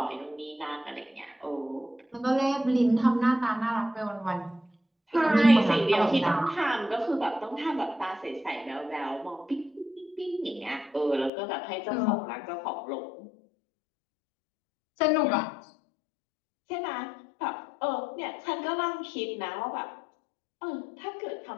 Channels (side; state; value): right; drops out; at 11.3 s